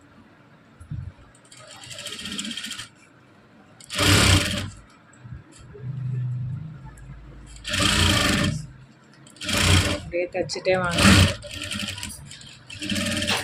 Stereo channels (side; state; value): both; identical; correlation 1.00